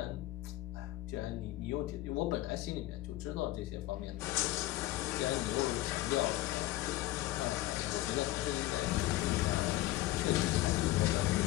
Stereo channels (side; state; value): right; quieter; 16.5 dB